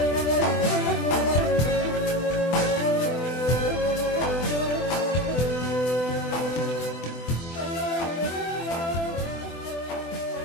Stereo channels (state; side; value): late; right; 24 ms